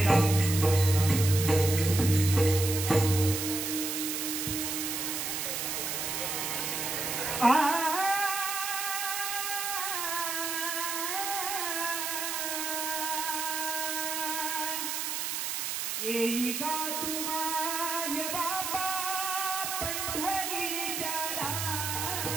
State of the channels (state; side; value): noise; right; hiss, 2 dB below the sound